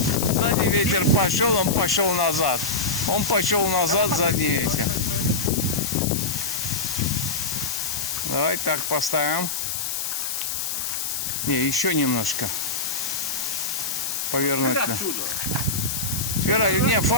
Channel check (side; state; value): left; noise; hiss, 2 dB below the sound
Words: Сзади ветер пошел, он пошел назад. Он пошел назад, задний ветер. Давай так поставим. Не, еще немножко. Повернуть. Теперь отсюда. Теперь, не,